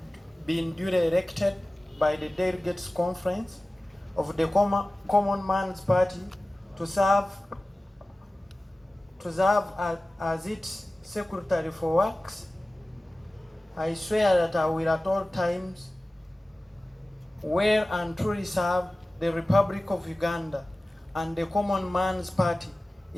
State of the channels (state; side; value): normal; both; correlation 0.97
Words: been duly elected by the Delegates Conference of the Common Man's Party to serve as its Secretary for Works, I swear that I will at all times well and truly serve the Republic of Uganda and the Common Man's Party